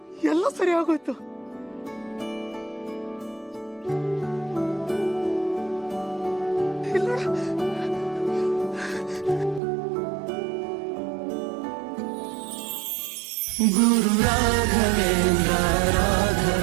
ಎಲ್ಲ ಸರಿ ಆಗೋಯ್ತು. ಗುರು ರಾಘವೇಂದ್ರ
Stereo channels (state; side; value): drops out; left; at 9.6 s